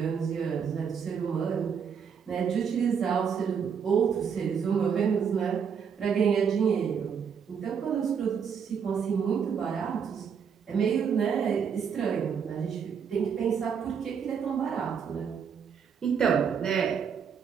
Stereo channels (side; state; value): left; quieter; 6.9 dB